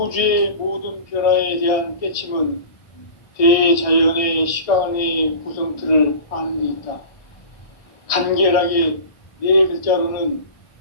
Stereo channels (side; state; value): right; late; 1.6 ms